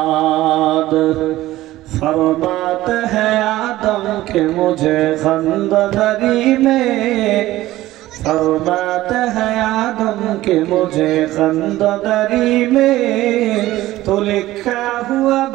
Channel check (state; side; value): quieter; left; 16.1 dB